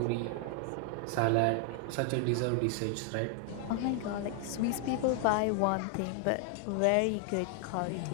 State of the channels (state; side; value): different; both; correlation 0.00